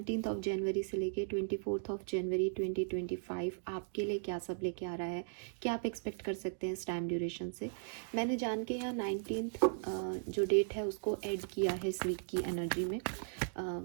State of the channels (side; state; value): left; silent; digital silence